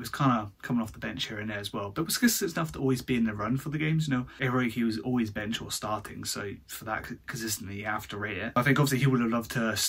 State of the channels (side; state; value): both; identical; correlation 1.00